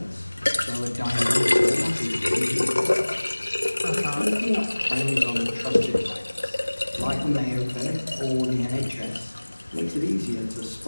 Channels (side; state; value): both; inverted; correlation -1.00